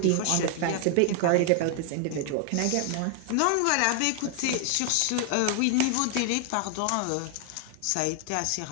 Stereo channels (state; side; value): different; both; correlation 0.00